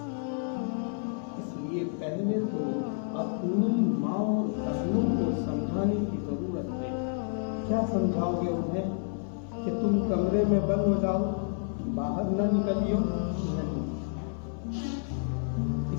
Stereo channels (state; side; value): silent; right; 58 dB below the other